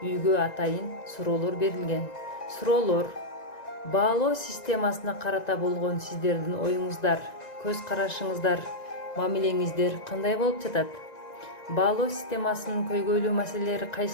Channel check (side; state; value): right; late; 1.9 ms